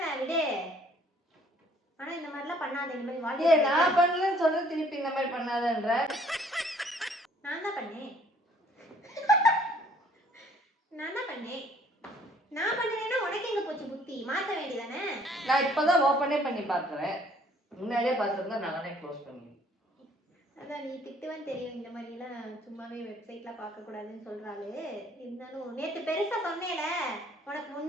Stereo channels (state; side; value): normal; both; correlation 0.60